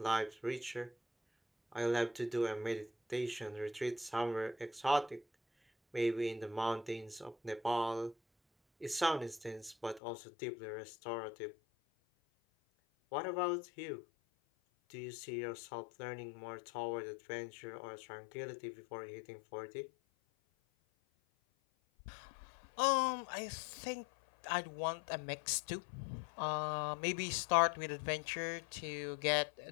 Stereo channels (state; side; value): drops out; right; at 10.0 s